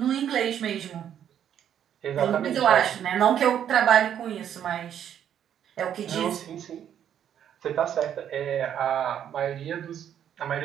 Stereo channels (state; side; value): quieter; left; 9.6 dB